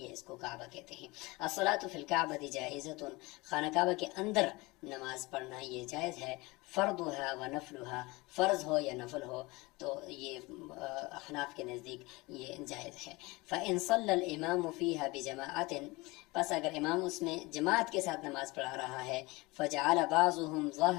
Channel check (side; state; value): right; quieter; 23.2 dB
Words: اس کو کعبہ کہتے ہیں. الصلاۃ فی الکعبۃ جائزۃ، خانہ کعبہ کے اندر نماز پڑھنا یہ جائز ہے. فرضها و نفلها، فرض ہو یا نفل ہو تو یہ احناف کے نزدیک یہ جائز ہے. فإن صلى الإمام فيها بجماعة، پس اگر امام اس میں جماعت کے ساتھ نماز پڑھا رہا ہے، فجعل بعضهم